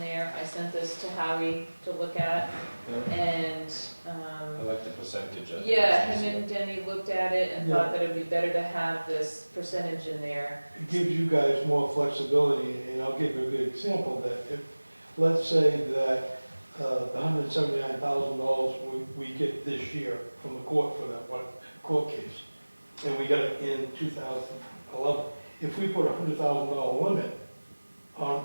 I sent this to Howie to look at, Yeah. and I like the percentage of it. yeah, It's him easier. and Denny looked at it and Yeah. thought that it would be better to have this percentage in there. It gives you guys more flexibility, and I'll give you a good example, that if, let's say that the $179,000 we get this year from the court for that one court case, and we got it in 2011, if we put a $100,000 limit on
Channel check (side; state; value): both; inverted; correlation -1.00